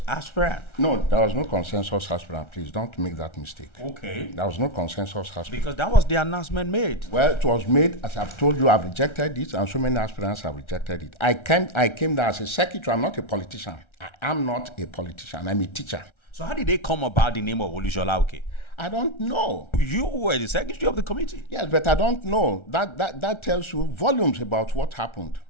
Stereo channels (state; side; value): late; right; 1.3 ms